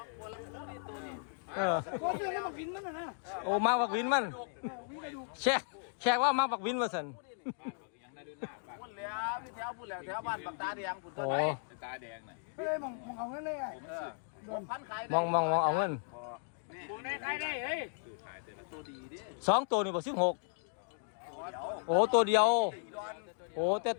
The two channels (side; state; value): right; silent; digital silence